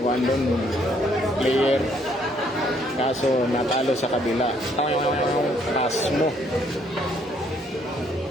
player. Kaso natalo sa kabila. Pass mo.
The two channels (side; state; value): both; normal; correlation 0.67